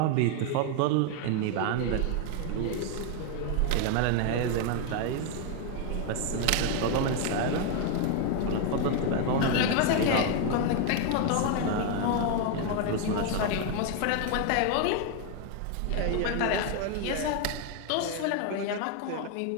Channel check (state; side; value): different; both; correlation 0.01